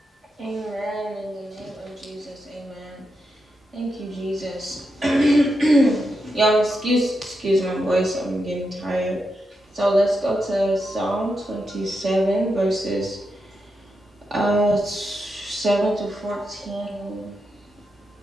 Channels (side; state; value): both; normal; correlation 0.86